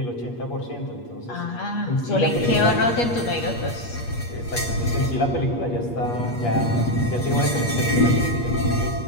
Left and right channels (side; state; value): right; late; 8.4 ms